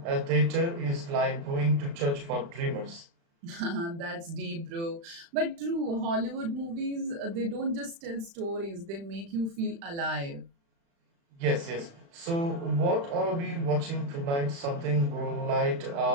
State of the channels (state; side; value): late; left; 36 ms